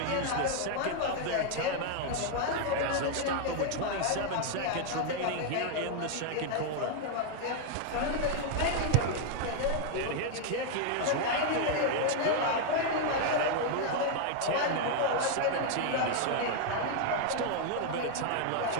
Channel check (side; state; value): both; different; correlation 0.00